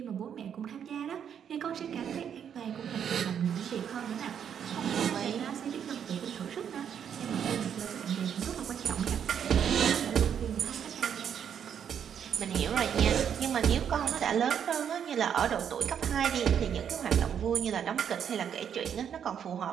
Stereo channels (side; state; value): left; quieter; 8.4 dB